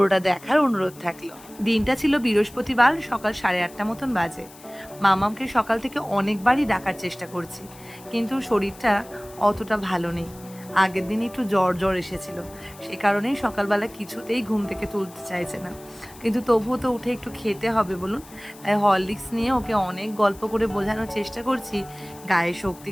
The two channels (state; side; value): noise; left; hiss, 21 dB below the sound